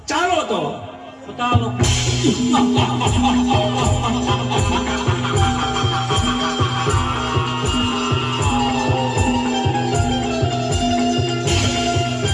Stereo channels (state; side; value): identical; both; correlation 1.00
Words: ચાલો તો ચાલો.